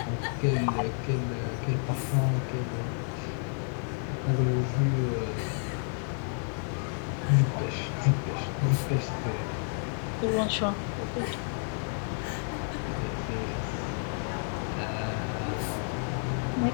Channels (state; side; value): silent; right; 56 dB below the other